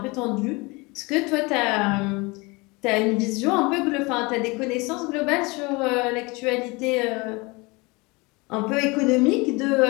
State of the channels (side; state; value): right; quieter; 25.8 dB